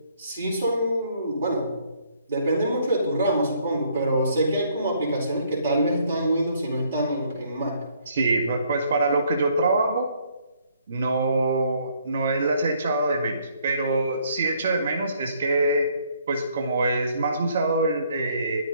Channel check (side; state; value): both; inverted; correlation -0.66